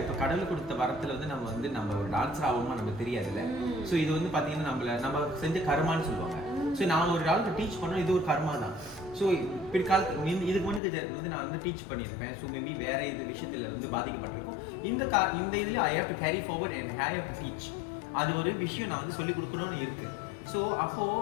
கடவுள் கொடுத்த வரத்தில் வந்து நம்ம ஒரு டான்ஸர் ஆகுமா நமக்கு தெரியாதுல்ல. ஸோ இது வந்து பார்த்தீங்கன்னா நம்ம செஞ்ச கர்மான்னு சொல்லுவாங்க. ஸோ நான் ஒரு ஆளுக்கு டீச் பண்ணோம், இது ஒரு கர்மா தான். ஸோ பிற்காலத்து இதுக்கு முன்னாடி வந்து நான் வந்து டீச் பண்ணியிருப்பேன். ஸோ மேபி வேற இது விஷயத்தில் வந்து பாதிக்கப்பட்டிருக்கும். இந்த இதில் I have to carry forward and I have to teach. அது ஒரு விஷயம் நான் வந்து சொல்லிக் கொடுக்கணும்னு இருக்கு. ஸோ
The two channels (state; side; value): drops out; right; at 10.8 s